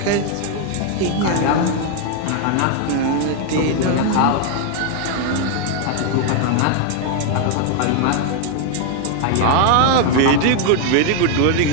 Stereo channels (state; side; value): different; both; correlation 0.00